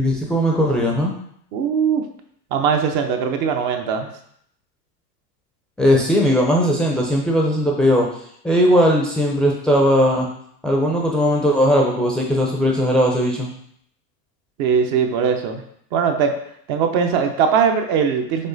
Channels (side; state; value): both; normal; correlation 0.47